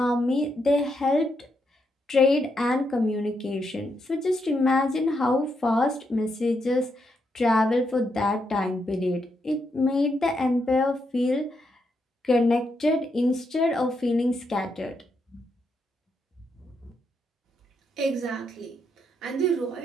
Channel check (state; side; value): normal; both; correlation 0.80